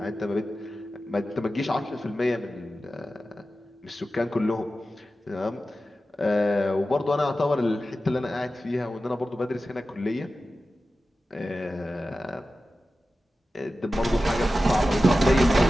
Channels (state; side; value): normal; both; correlation 0.94